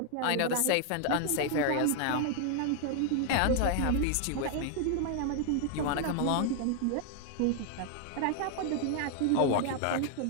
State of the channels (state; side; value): different; both; correlation 0.00